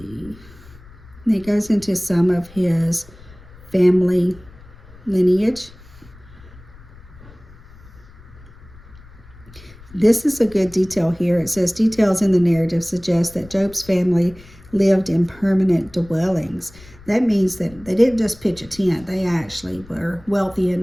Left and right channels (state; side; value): noise; left; rumble, 22 dB below the sound